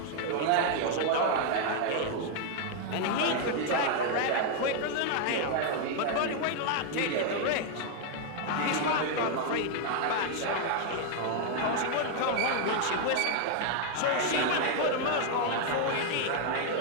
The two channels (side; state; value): both; different; correlation 0.00